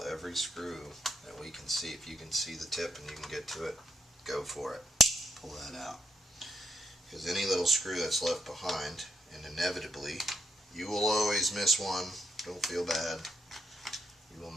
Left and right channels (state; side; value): normal; both; correlation 0.77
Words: every screw that we can see. If you can see the tip and you can get to it, go for it. Pull that out. Because any little screw that's left behind, and inevitably, you will always miss one. Don't feel bad. You will